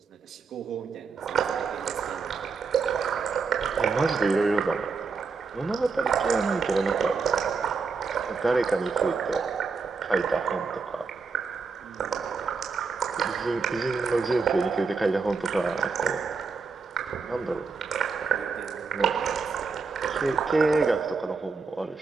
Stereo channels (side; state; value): left; quieter; 4.8 dB